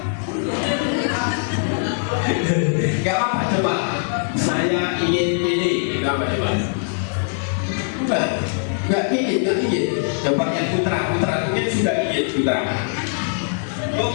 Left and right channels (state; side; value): silent; right; 56 dB below the other